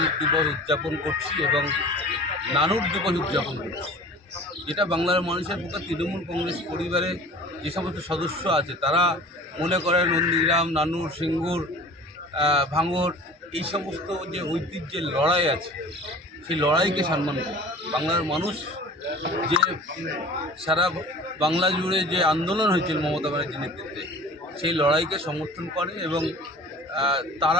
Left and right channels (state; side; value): normal; both; correlation 0.42